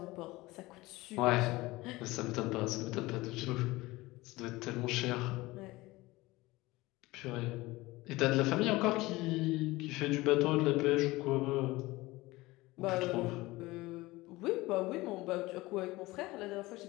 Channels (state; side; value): quieter; right; 20.1 dB